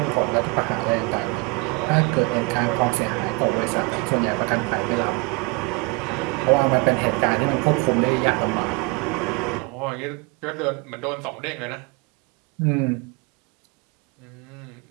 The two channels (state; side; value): quieter; left; 28.1 dB